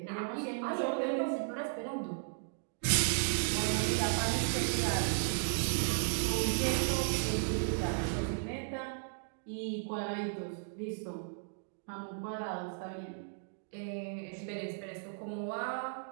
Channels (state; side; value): silent; left; digital silence